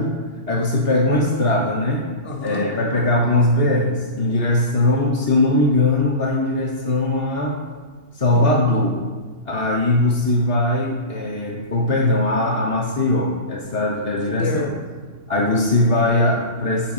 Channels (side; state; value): left; late; 2.8 ms